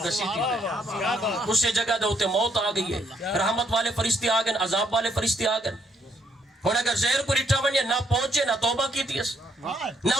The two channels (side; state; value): both; normal; correlation 0.72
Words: گسیتی ہے اسے جگہ دے ہوتے موت آ گئی ہے رحمت والے فرشتے آ گئے عذاب والے فرشتے آ گئے. اور اگر زہر کو رٹھا ونیا نہ پہنچے نہ توبہ کی تیس نہ